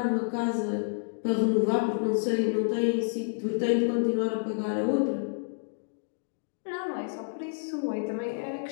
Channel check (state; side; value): silent; right; digital silence